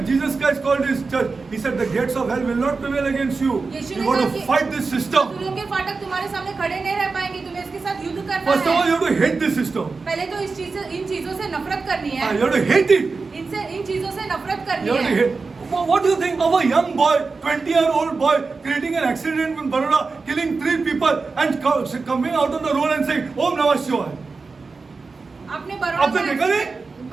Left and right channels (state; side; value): quieter; left; 4.3 dB